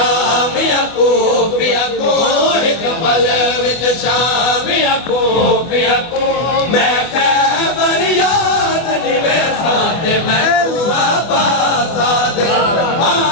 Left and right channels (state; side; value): late; right; 24 ms